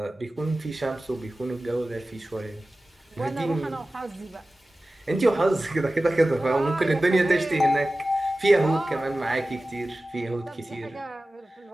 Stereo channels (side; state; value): both; normal; correlation 0.96